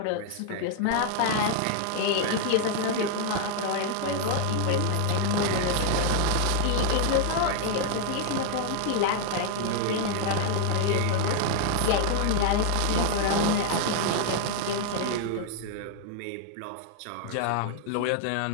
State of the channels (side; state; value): both; different; correlation 0.00